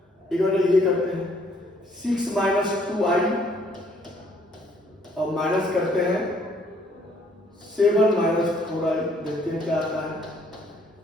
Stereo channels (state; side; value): normal; both; correlation 0.64